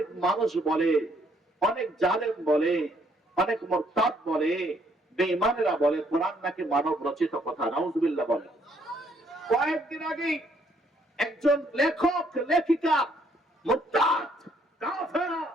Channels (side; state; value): both; normal; correlation 0.68